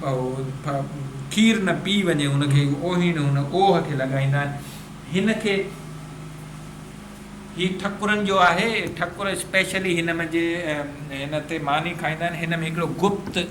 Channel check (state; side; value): identical; both; correlation 1.00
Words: खीर न पी वञे हुनखे ओहीन हुन ओह खे लॻाईंदा आहिनि। हिनखे ही ठकुरनि जो आहे ठकुर स्पेशली हिन में जे हिन ते मानी खाईंदा आहिनि। हिन में हिकिड़ो गुप्त